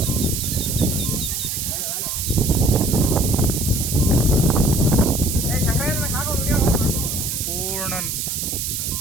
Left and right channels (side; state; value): right; noise; hiss, 2 dB below the sound